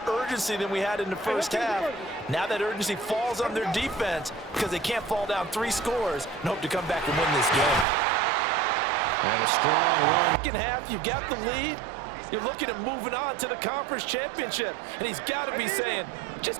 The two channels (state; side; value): drops out; left; at 7.9 s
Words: urgency than we had in the first half. Now that urgency falls on their defense because they can't fall down 3 scores and hope to come back and win this game. And a strong run. Second half, you've got the lead. You're looking at moving on to the conference championship. And he's got to be saying,